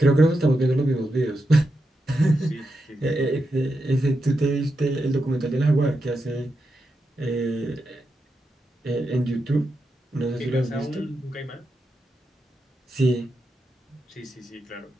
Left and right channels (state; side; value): normal; both; correlation 0.87